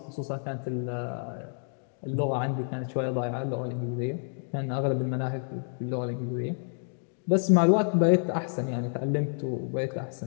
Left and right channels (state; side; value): silent; right; 57 dB below the other